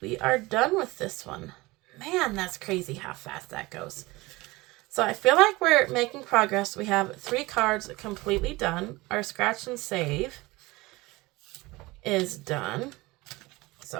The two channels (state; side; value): quieter; left; 21.5 dB